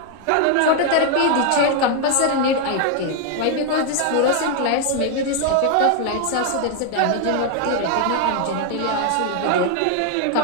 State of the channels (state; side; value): different; both; correlation 0.00